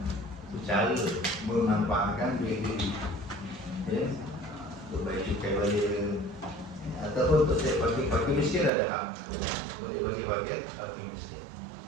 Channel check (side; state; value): left; drops out; at 8.7 s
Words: Itu cara memanfaatkan duit itu. Untuk bayar cukai balik, ataupun untuk saya pakai miskin ada hak. Boleh bagi bagian pakai miskin.